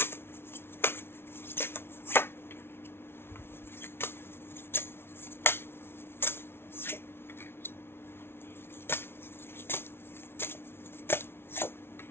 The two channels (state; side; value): late; right; 0.12 ms